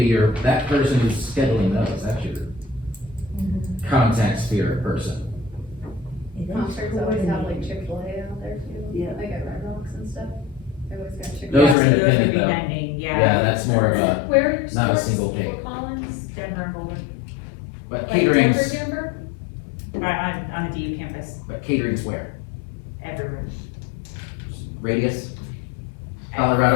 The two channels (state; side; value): drops out; right; at 11.8 s